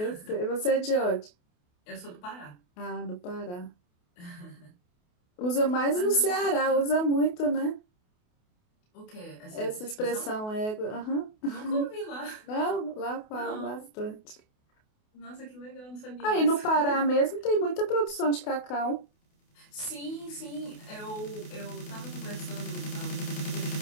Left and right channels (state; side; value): late; right; 28 ms